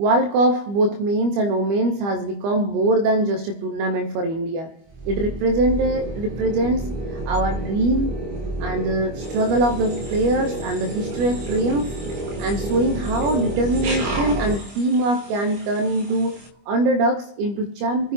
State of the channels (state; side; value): late; left; 25 ms